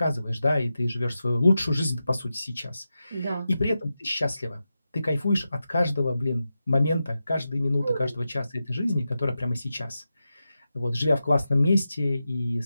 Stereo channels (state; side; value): inverted; both; correlation -0.91